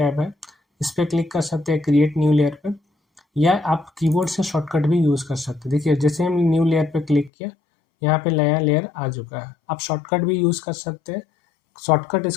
है इस पर क्लिक कर सकते हैं, क्रिएट न्यू लेयर पे, या आप कीबोर्ड से शॉर्टकट भी यूज़ कर सकते हैं। देखिए जैसे हम न्यू लेयर पे क्लिक किया, यहाँ पे नया लेयर आ चुका है। आप शॉर्टकट भी यूज़ कर सकते हैं। शॉर्टकट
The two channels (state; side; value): drops out; right; at 7.3 s